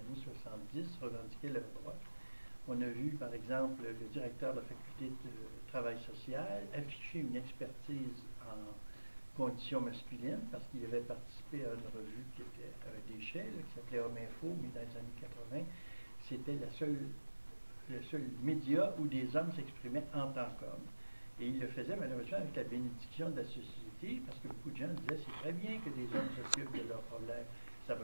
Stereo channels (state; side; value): inverted; both; correlation -1.00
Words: 70 revendiquaient leurs droits. On a vu par exemple le directeur de la faculté de travail social afficher une expertise en conditions masculines parce qu'il avait participé à une revue qui était à un déchet, qui s'appelait Homme Info, mais dans les années 80, c'était le seul média où des hommes s'exprimaient en tant qu'hommes. Et il le faisait malheureusement avec la bénédiction de la société, parce que beaucoup de gens disaient c'est très bien que des hommes s'occupent de leurs problèmes. Ça